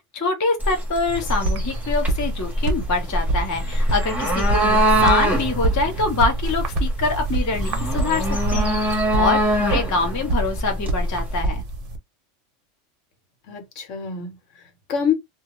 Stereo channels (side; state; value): both; normal; correlation 0.31